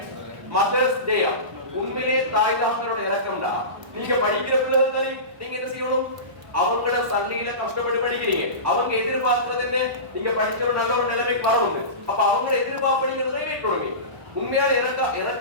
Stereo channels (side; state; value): left; late; 1.1 ms